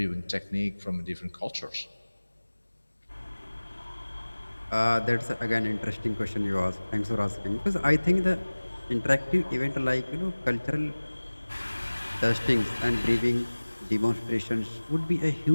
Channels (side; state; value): both; inverted; correlation -1.00